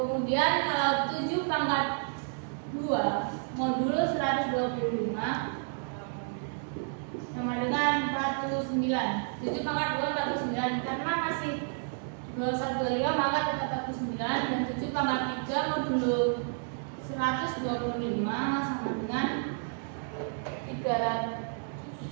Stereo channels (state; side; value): silent; left; 57 dB below the other